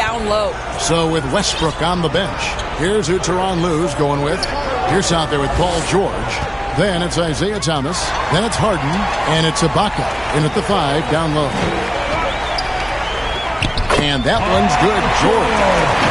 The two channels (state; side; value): identical; both; correlation 1.00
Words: low. So with Westbrook on the bench, here's who Tyronn Lue's going with. Here's out there with Paul George. Then it's Isaiah Thomas. Then it's Harden. And it's Ibaka in at the 5 down low. And that one's good. George.